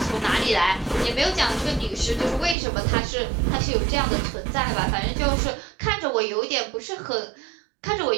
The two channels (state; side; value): drops out; left; at 2.6 s